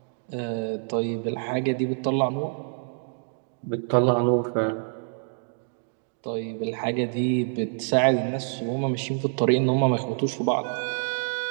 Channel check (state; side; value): silent; left; digital silence